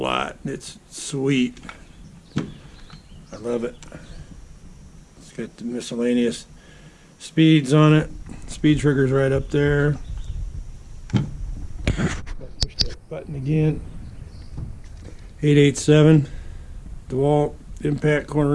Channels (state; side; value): identical; both; correlation 1.00